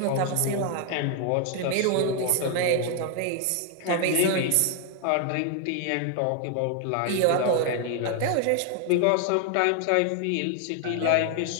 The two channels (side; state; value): both; different; correlation 0.00